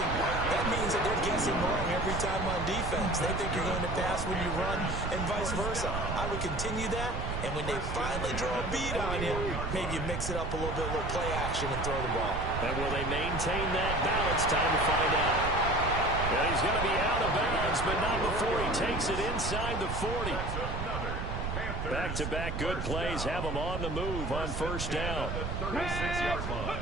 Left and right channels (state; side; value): noise; right; rumble, 4 dB below the sound